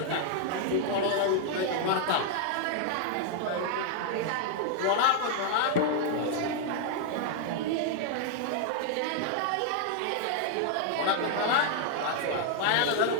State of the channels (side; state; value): both; different; correlation 0.00